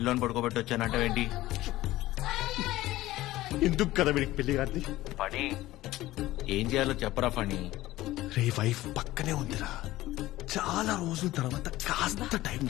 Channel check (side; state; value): right; quieter; 16.6 dB